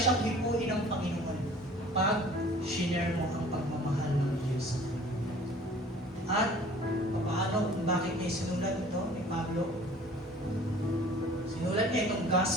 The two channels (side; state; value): both; normal; correlation 0.49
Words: hipuin ng Panginoon pag shinare mo ang pagmamahal ng Diyos. At paano, bakit niya sinulat ito ni Pablo? Sinulat niya itong